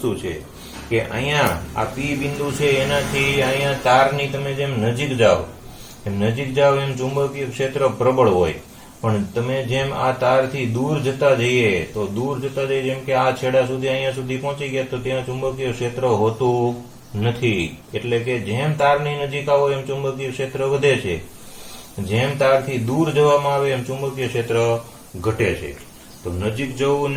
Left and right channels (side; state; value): both; identical; correlation 1.00